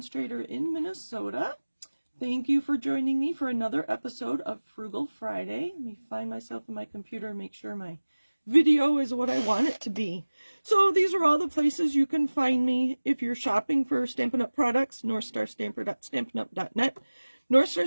in Minnesota. Thank you for joining me for another episode of Frugal Friday. Let me find myself in my computer and make sure my video is what I want it to be. So these are all the places you can find me if you're shopping for Stampin' Up! Products. NorthStarStamper.stampinup.net.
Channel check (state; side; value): inverted; both; correlation -1.00